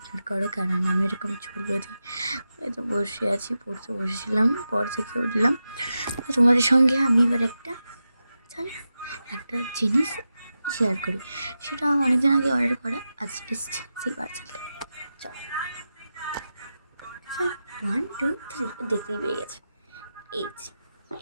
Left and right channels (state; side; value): inverted; both; correlation -0.91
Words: করো, কারণ আমি এরকম চুল বেঁধে হয়তো বসে আছি, পড়তে বসেছিলাম, পর থেকে উঠলাম। তো তোমাদের সঙ্গে আমি এবার একটা জিনিস শেয়ার করি। সেটা অনেকদিন আগে অর্ডার করা, আজ এসছে সেই পার্সেলটা। চলো, 1 2 3 দেখতেই পেয়ে গেছে। এই